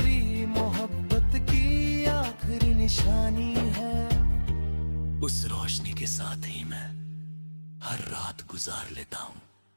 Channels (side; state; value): both; inverted; correlation -1.00